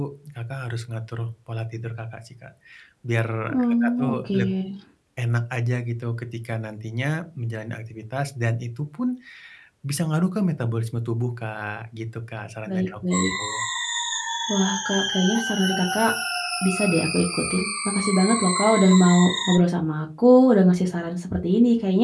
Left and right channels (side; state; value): both; identical; correlation 1.00